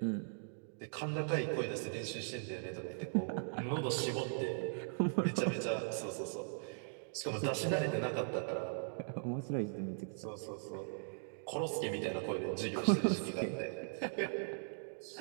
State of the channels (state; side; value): silent; left; digital silence